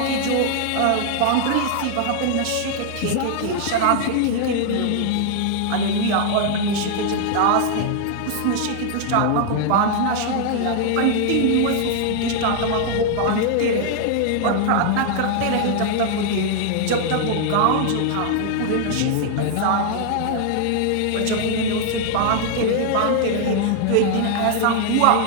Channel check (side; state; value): both; different; correlation 0.00